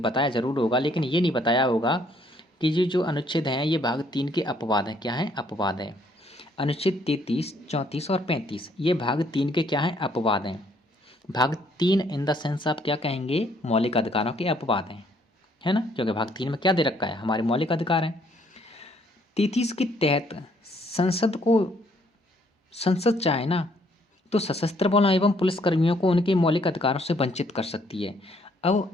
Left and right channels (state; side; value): normal; both; correlation 0.67